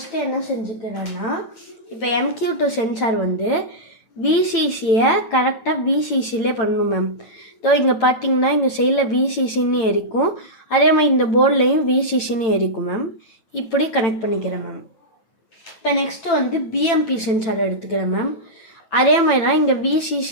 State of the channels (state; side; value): late; right; 9.0 ms